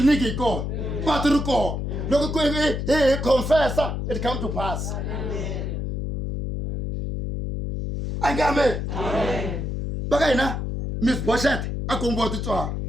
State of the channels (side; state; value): left; noise; hum, 3 dB below the sound